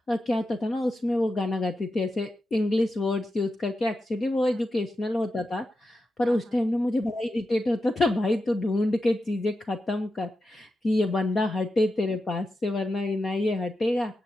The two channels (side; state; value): both; normal; correlation 0.89